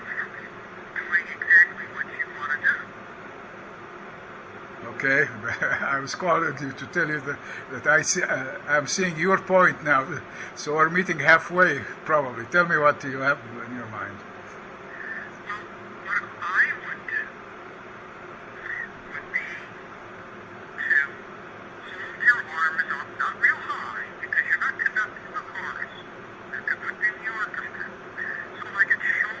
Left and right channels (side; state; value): both; identical; correlation 1.00